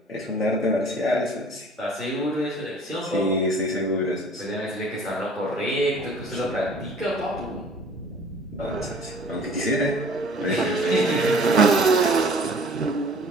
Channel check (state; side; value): normal; both; correlation 0.50